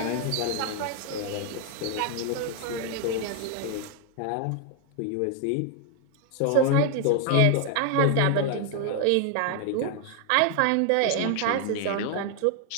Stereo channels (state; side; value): different; both; correlation 0.00